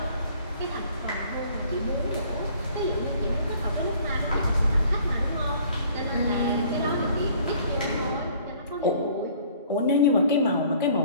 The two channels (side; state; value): both; inverted; correlation -0.55